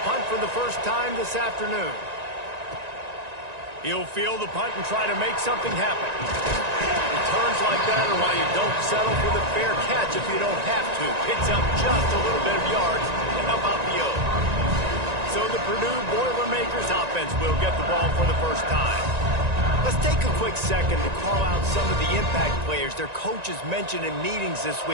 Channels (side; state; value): left; late; 1.9 ms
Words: punt for the first time this afternoon. He'll field the punt and try to make something happen. Returns like that are why you don't settle for the fair catch if you don't have to. Picks up just a little bit of yards to help out the O. So the Purdue Boilermakers offense will get the ball for the first time. Let's take a quick second to call out some of the impact players their coaches mentioned in meetings this